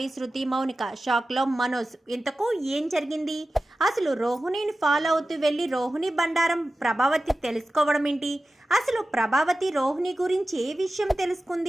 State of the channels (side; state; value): both; normal; correlation 0.94